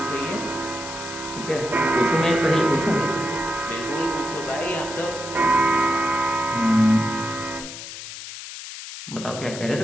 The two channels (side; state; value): left; noise; hiss, 11 dB below the sound